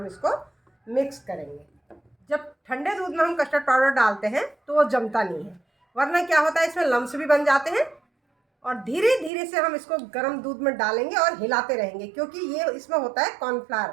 इसको मिक्स करेंगे। जब ठंडे दूध में हम कस्टर्ड पाउडर डालते हैं तो वो जमता नहीं है, वरना क्या होता है इसमें लम्स भी बन जाते हैं। और धीरे धीरे से हम इसको गर्म दूध में डालेंगे और हिलाते रहेंगे, क्योंकि ये इसमें होता है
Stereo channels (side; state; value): left; drops out; at 9.3 s